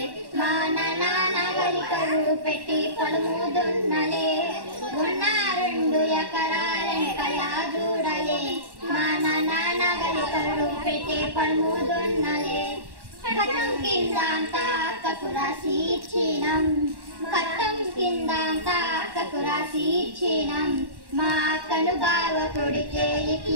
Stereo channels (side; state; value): left; late; 1.1 ms